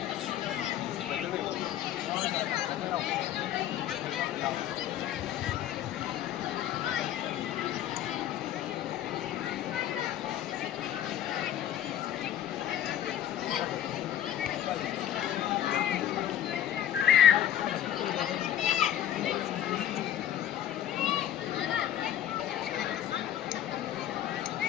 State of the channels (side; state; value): right; quieter; 11.4 dB